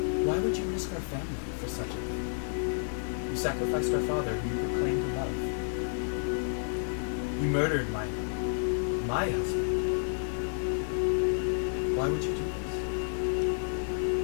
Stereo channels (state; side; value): silent; right; digital silence